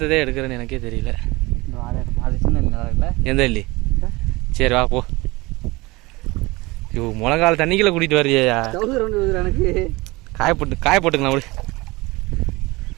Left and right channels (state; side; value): quieter; left; 22.6 dB